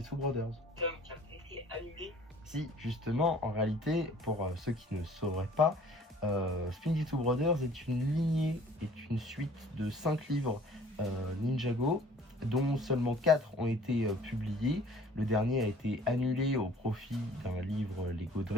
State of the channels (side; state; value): both; normal; correlation 0.52